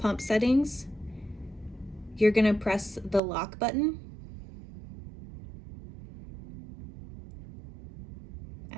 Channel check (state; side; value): drops out; left; at 3.2 s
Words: settings, you're going to press the lock button